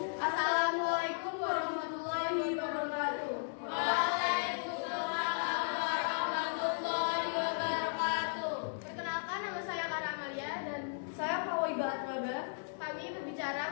Assalamualaikum warahmatullahi wabarakatuh. Perkenalkan, nama saya Kara Amalia dan saya Kawiba Atraga. Kami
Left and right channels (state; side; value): silent; right; digital silence